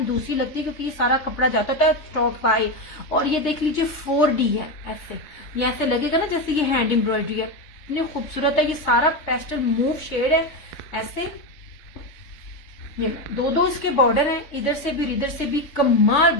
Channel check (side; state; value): right; late; 3.5 ms